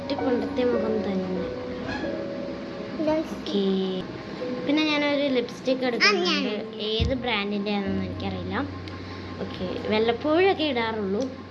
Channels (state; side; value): identical; both; correlation 1.00